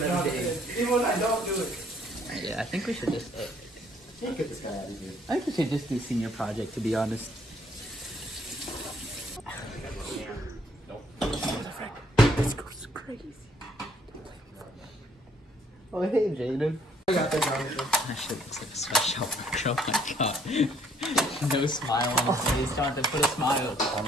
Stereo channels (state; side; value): normal; both; correlation 0.64